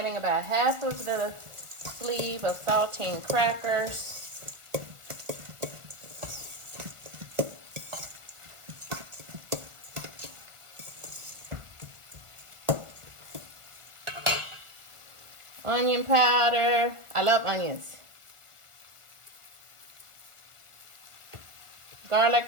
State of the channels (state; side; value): late; left; 1.4 ms